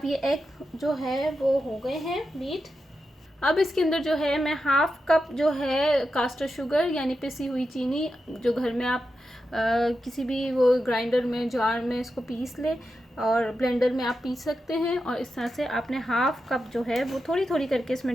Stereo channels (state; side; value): normal; both; correlation 0.89